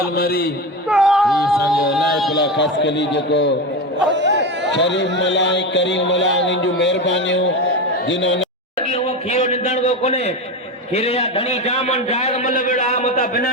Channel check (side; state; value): both; normal; correlation 0.20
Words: मरी ये समझो लाइकुला खास कली जो शरीफ मलाई करीम मलाई निजु मेहरबानियों जिन्होंने वो खीरो निंदण को कोने खीरे या घणी जामन जाग मल बेड़ा मता बिना